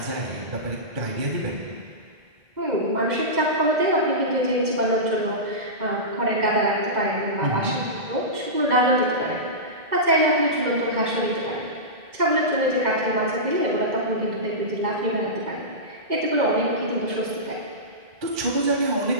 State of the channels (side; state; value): left; late; 2.0 ms